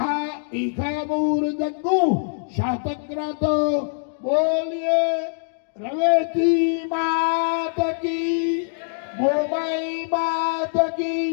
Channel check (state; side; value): silent; right; digital silence